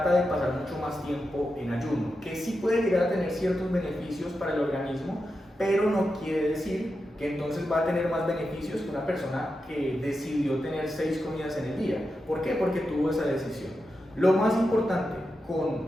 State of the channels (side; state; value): both; normal; correlation 0.89